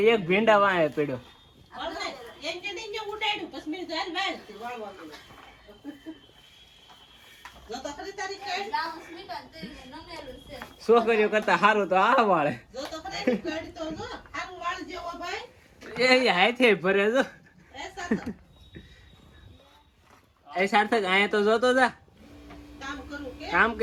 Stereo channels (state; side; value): identical; both; correlation 1.00